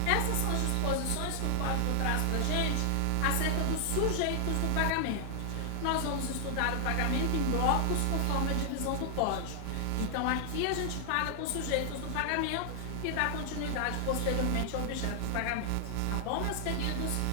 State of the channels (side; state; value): both; different; correlation 0.00